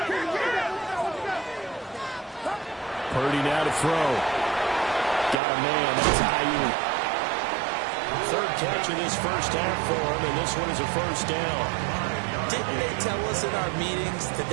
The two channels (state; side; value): drops out; left; at 5.4 s